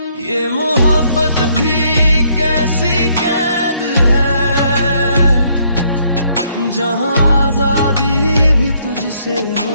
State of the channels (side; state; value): both; inverted; correlation -0.70